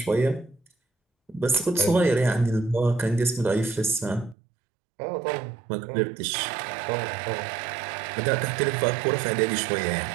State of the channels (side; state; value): left; drops out; at 4.4 s